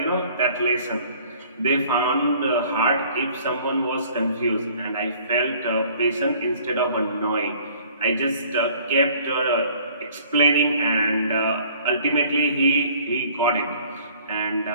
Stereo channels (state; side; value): inverted; both; correlation -0.54